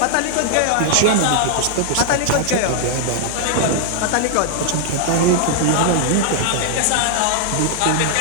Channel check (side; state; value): both; different; correlation 0.00